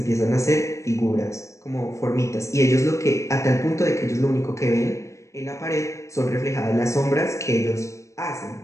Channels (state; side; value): late; right; 0.15 ms